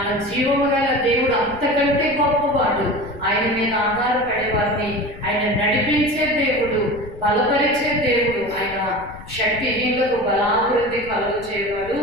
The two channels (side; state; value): left; noise; rumble, 17 dB below the sound